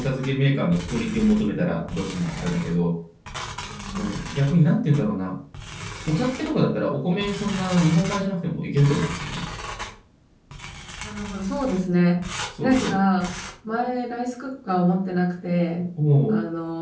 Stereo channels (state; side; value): identical; both; correlation 1.00